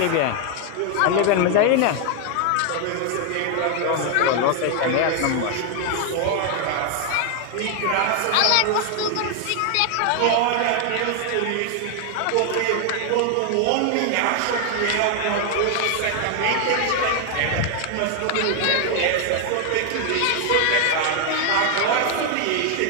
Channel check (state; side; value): different; both; correlation 0.00